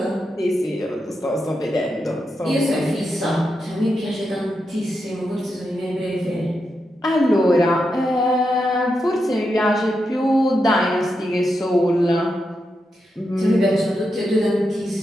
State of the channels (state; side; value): normal; both; correlation 0.86